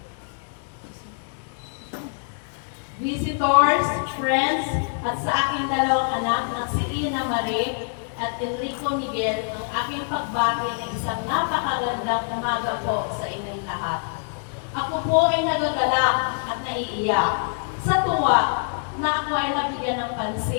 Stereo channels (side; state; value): right; silent; 62 dB below the other